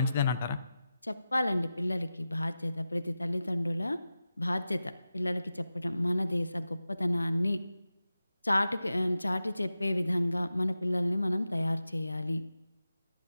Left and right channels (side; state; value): both; inverted; correlation -0.93